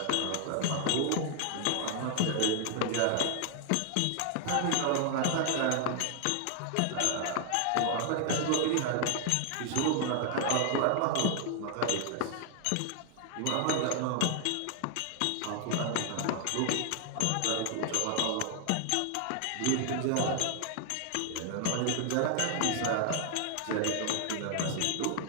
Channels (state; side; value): different; both; correlation 0.00